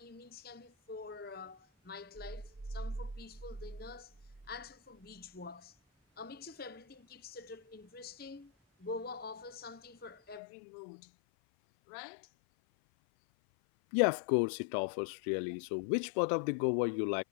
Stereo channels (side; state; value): right; drops out; at 10.4 s